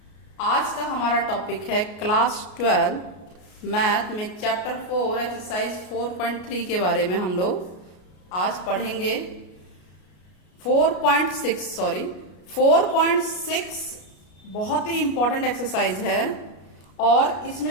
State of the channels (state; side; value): late; right; 33 ms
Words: आज का हमारा टॉपिक है क्लास 12 मैथ में चैप्टर 4 एक्सरसाइज 4.3 के बारे में हम लोग आज पढ़ेंगे। 4.6 बहुत ही इंपॉर्टेंट एक्सरसाइज है और